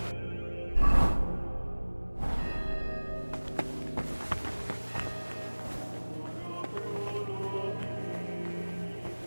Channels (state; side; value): inverted; both; correlation -1.00